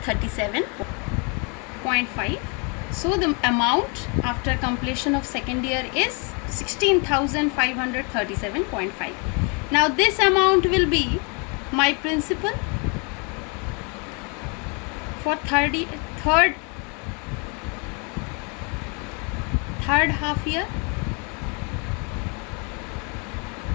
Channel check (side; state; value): right; quieter; 33.9 dB